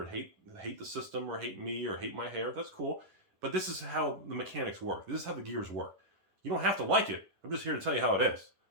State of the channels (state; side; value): late; left; 11 ms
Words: hate the system, or hate me, or hate my hair. That's cool. But this is how the mechanics work. This is how the gears work. You don't have to like it. I'm just here to tell you how it is.